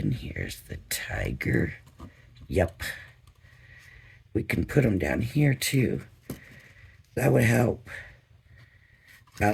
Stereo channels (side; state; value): both; identical; correlation 1.00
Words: Here's the tiger. Yep. We can put them down here too. That would help